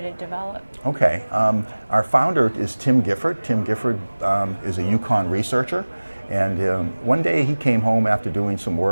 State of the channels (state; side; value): inverted; both; correlation -1.00